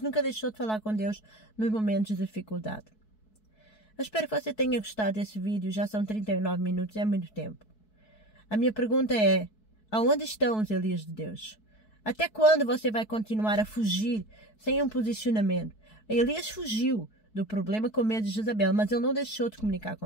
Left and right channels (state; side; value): late; right; 4.6 ms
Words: nunca deixou de falar com Deus nos momentos de dificuldade. Eu espero que você tenha gostado desse vídeo. Já são 39 minutos, é muito tempo. A minha pergunta é, aonde estão os Elias de Deus? Até quando você vai continuar a fugir sem um posicionamento? Elias fugiu do problema com medo de Jezabel, mas ele não deixou de comunicar